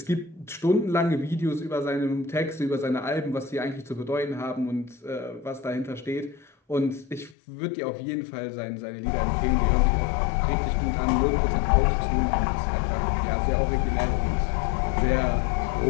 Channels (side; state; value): right; drops out; at 7.4 s